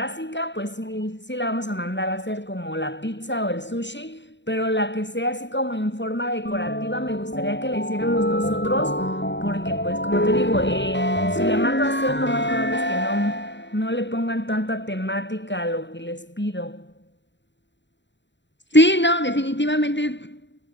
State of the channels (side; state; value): right; late; 0.52 ms